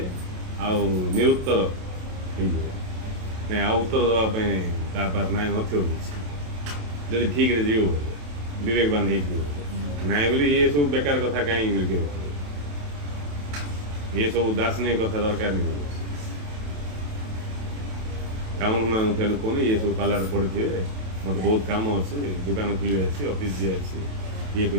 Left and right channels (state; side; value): late; left; 28 ms